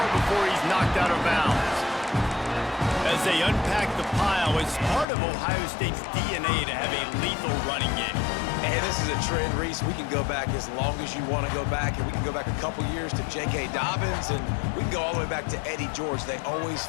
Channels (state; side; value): drops out; right; at 5.1 s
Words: he's knocked out of bounds. As they unpack the pile, it's part of Ohio State's DNA to have a lethal running game. And this is a trend, Reese. We can go back as long as you want to go back, and we can go back a couple years to J.K. Dobbins, and we can go all the way back to Eddie George. They always